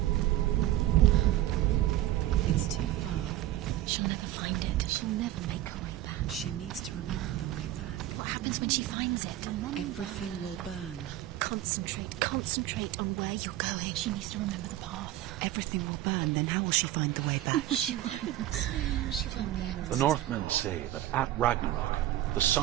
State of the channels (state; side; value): quieter; left; 14.1 dB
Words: It's too far. She'll never find it. She'll never make her way back. She needs to remember the way back. What happens when she finds it? Remember. Everything will burn. Concentrate on where you're going. She needs to remember the path. Everything will burn, then how will she find the way back? She won't. She won't be able to. The Northmen say that at Ragnarok, the